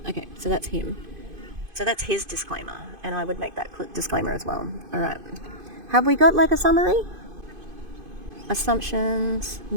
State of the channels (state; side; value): late; left; 2.5 ms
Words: okay, so that's him. So that's his disclaimer, and I would make that disclaimer as well. Alright. Have we got like a summary? Assumptions